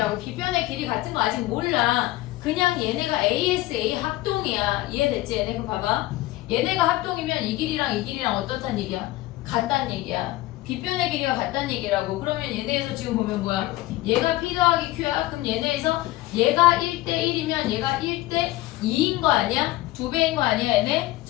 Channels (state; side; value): quieter; right; 17.5 dB